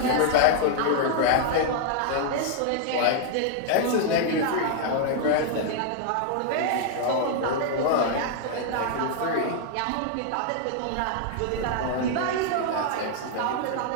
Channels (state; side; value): different; both; correlation -0.01